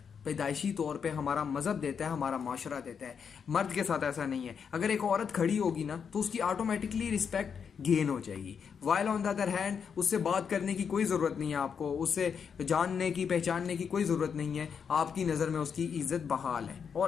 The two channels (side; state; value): right; quieter; 6.8 dB